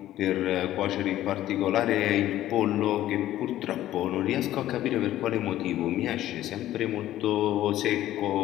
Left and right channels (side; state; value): right; quieter; 13.6 dB